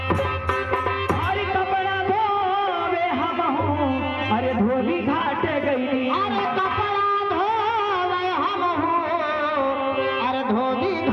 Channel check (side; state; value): both; identical; correlation 1.00